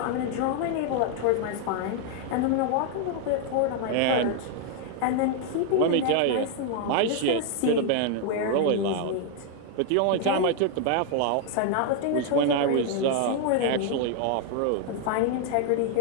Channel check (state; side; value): different; both; correlation 0.00